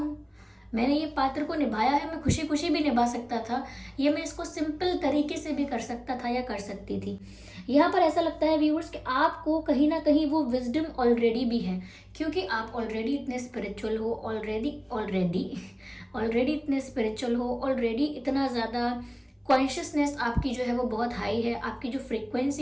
मैंने ये पात्र को निभाया है, मैं खुशी खुशी भी निभा सकता था, ये मैं इसको सिंपल तरीके से भी कर सकता था या कर सकती थी। यहाँ पर ऐसा लगता है व्यूअर्स कि आपको कहीं ना कहीं वो विजडम ऑलरेडी भी है, क्योंकि आप ऑलरेडी इतने स्पिरिचुअल हो, ऑलरेडी इतने स्पिरिचुअल हो, ऑलरेडी इतना ज़्यादा कॉन्शियसनेस आपकी जो है वो बहुत हाई है, आपकी जो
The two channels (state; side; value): identical; both; correlation 1.00